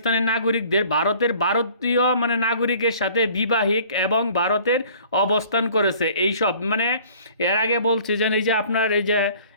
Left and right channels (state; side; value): inverted; both; correlation -0.51